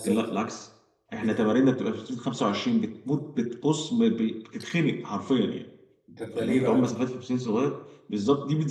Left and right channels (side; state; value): both; identical; correlation 1.00